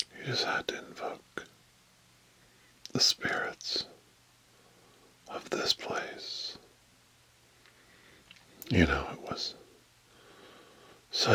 You just had to invoke the spirits of this place. You know, it was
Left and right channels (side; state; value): both; identical; correlation 1.00